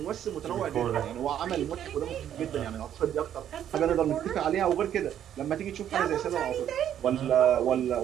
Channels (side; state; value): left; quieter; 10.3 dB